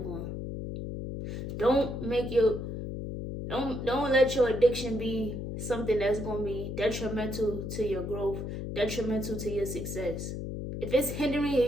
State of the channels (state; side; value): noise; left; hum, 5 dB below the sound